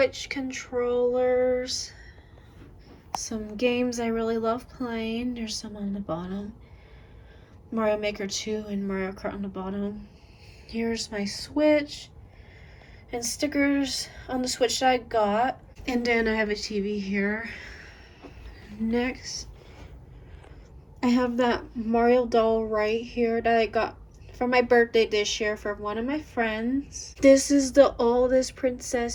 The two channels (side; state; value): both; identical; correlation 1.00